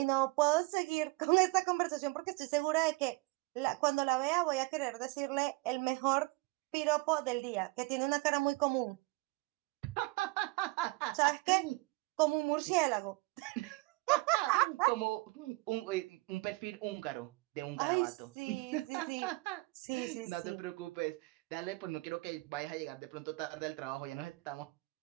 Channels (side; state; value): left; quieter; 23.8 dB